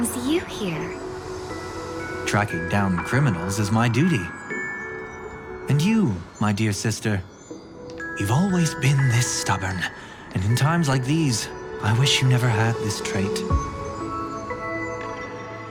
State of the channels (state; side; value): identical; both; correlation 1.00